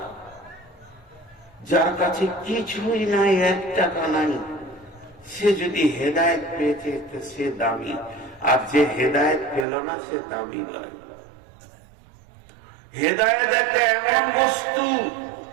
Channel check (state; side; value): drops out; left; at 9.7 s